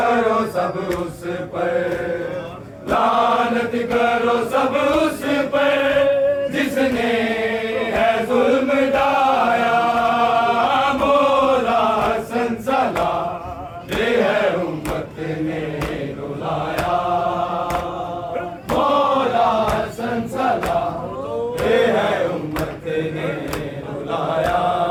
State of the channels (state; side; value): identical; both; correlation 1.00